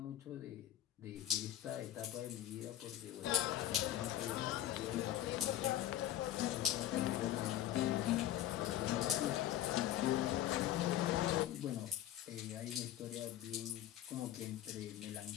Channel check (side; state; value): right; quieter; 12.6 dB